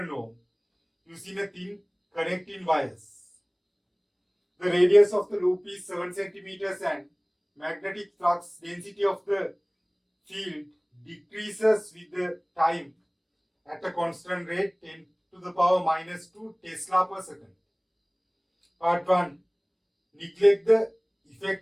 ohm using a thin connecting wires. The radius of the loop is 7 centimeters and magnetic flux density of the field decreases with the time at a constant rate 10 to the power minus 2 Tesla per second. Part 1. Neglect the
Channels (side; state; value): both; identical; correlation 1.00